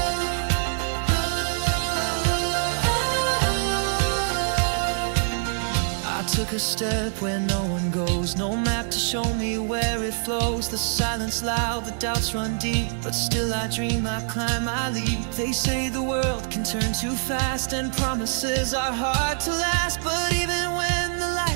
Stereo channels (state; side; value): silent; left; 62 dB below the other